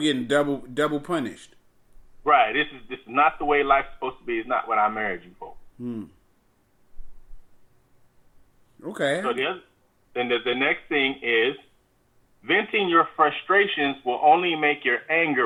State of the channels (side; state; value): both; identical; correlation 1.00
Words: double punished. Right. This is not the way life's supposed to be. It's not what I married you for. Okay. So the next thing is venting your frustrations will only make your